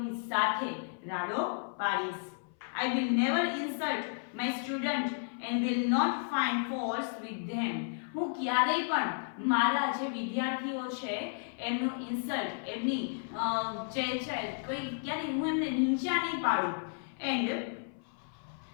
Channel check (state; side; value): silent; right; 56 dB below the other